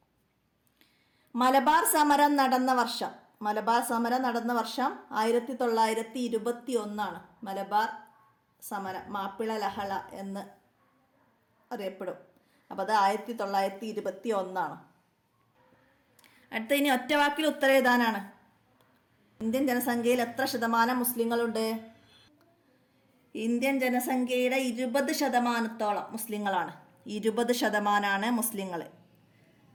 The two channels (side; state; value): both; identical; correlation 1.00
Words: മലബാർ സമരം നടന്ന വർഷം 1921. മലബാർ സമരം മാപ്പിള ലഹള എന്ന് അറിയപ്പെടും. അപ്പോൾ അത് 1921. അടുത്ത ഇനി ഒറ്റവാക്കിൽ ഉത്തരം എഴുതാനാണ്. ഇന്ത്യൻ ജനസംഖ്യയിൽ എത്ര ശതമാനം മുസ്ലിങ്ങളുണ്ട്? ഇന്ത്യൻ ജനസംഖ്യയുടെ 20% മുസ്ലിങ്ങളാണ്. 20%